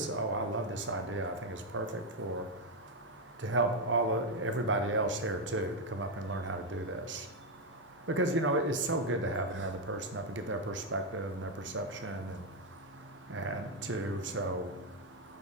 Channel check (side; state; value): both; normal; correlation 0.03